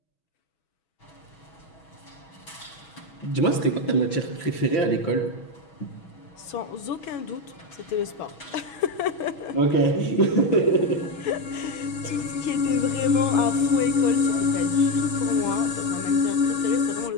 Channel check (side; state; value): right; late; 6.2 ms